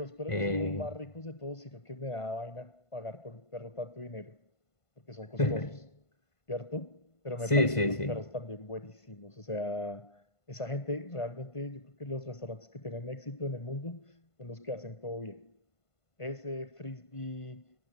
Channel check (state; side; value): late; right; 1.5 ms